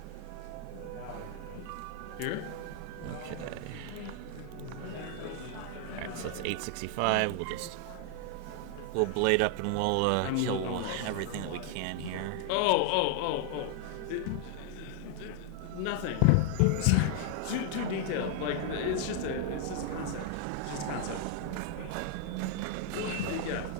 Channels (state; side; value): different; both; correlation 0.00